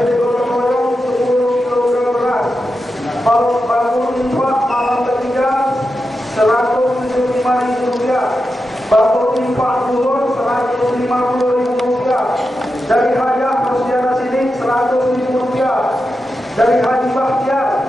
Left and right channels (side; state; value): both; normal; correlation 0.89